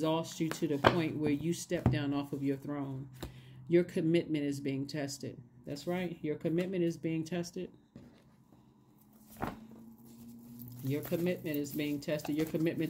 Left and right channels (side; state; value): both; identical; correlation 1.00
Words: you to the point where you step down off of your throne. Your commitment is being tested. That's right. Your commitment is being tested. Your commitment is being tested. Your